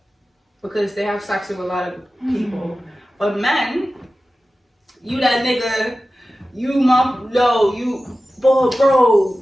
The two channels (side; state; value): both; normal; correlation 0.95